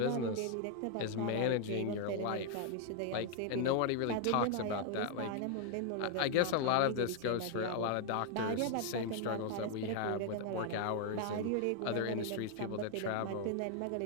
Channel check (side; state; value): both; different; correlation 0.00